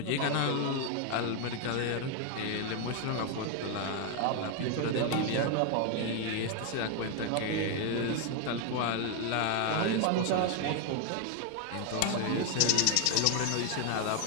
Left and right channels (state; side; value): different; both; correlation 0.01